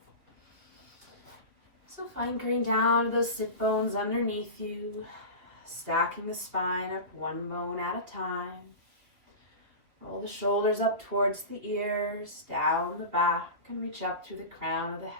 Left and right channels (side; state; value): left; late; 3.0 ms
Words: So anchoring down to those sit bones underneath you, stacking the spine up one bone at a time. Roll the shoulders up towards the ears, down the back, and reach up through the crown of the